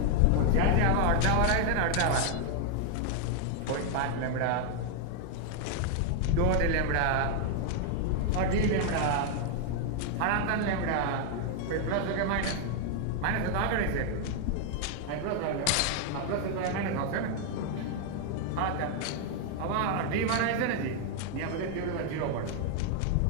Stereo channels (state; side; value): different; both; correlation 0.00